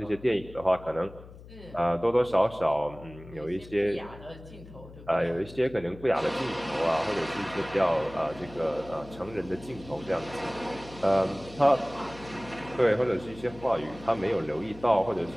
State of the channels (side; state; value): left; noise; hum, 18 dB below the sound